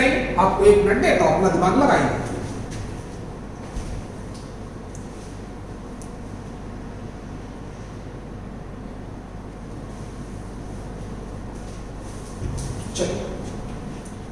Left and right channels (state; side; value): identical; both; correlation 1.00